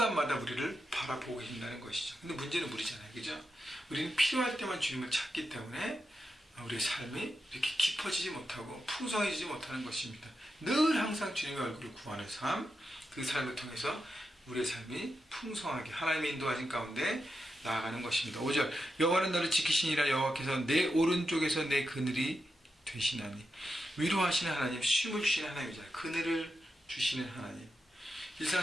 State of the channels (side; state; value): both; normal; correlation 0.88